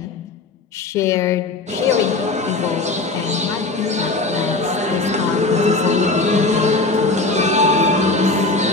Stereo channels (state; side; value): quieter; right; 3.4 dB